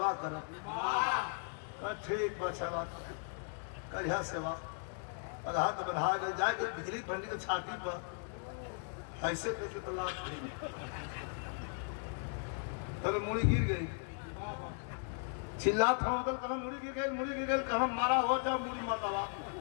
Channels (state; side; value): silent; right; 53 dB below the other